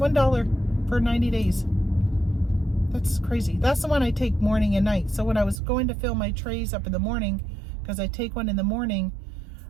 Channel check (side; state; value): left; drops out; at 5.6 s